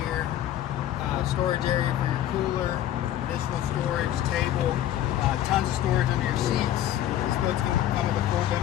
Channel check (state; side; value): quieter; right; 12.2 dB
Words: here, storage area for your cooler, additional storage, table, tons of storage under your seats. This boat's going to come with a full